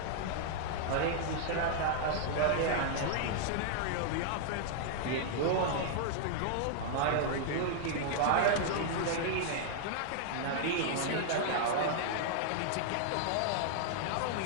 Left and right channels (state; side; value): different; both; correlation 0.00